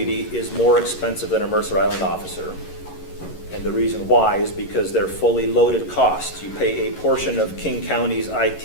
is more expensive than a Mercer Island officer, and the reason why is because they're fully loaded costs. You pay a portion of King County's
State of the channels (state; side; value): late; right; 11 ms